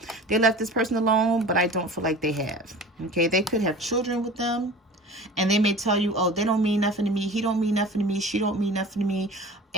they left this person alone, but I don't feel like they have. Okay, they could have children with them, and they may tell you, oh, they don't mean nothing to me, he don't mean nothing to me, she don't mean nothing to me.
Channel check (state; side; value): normal; both; correlation 0.39